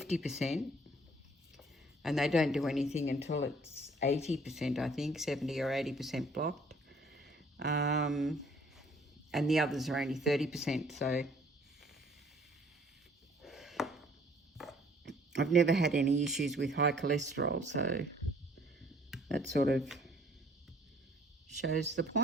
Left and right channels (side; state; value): both; normal; correlation 0.58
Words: and they don't do anything until it's 80%, I think, 70 or 80% blocked. And the others are only 30%, so I've never had any issues with high cholesterol, so that sort of shows the